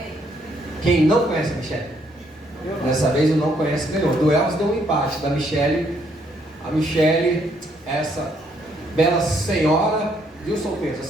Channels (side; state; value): both; normal; correlation 0.70